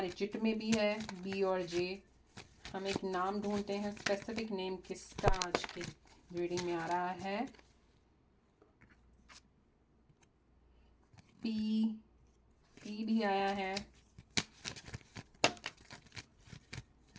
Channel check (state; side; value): identical; both; correlation 1.00